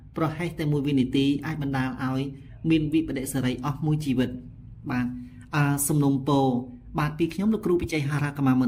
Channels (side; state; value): both; identical; correlation 1.00